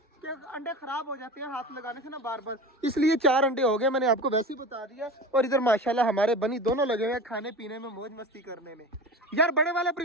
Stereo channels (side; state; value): both; normal; correlation 0.32